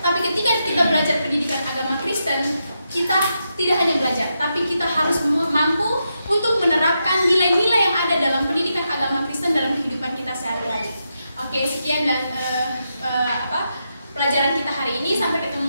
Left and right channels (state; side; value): inverted; both; correlation -0.85